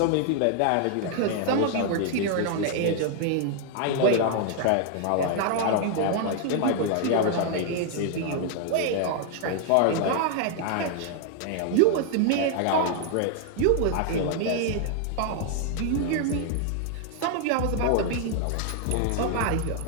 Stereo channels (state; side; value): different; both; correlation 0.00